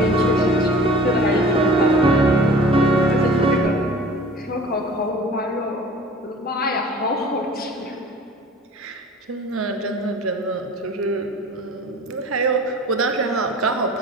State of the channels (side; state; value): both; normal; correlation 0.44